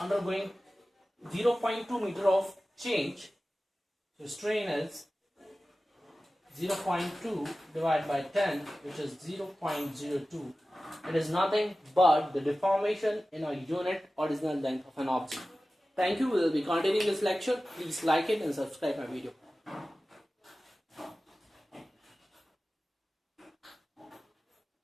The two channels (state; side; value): normal; both; correlation 0.96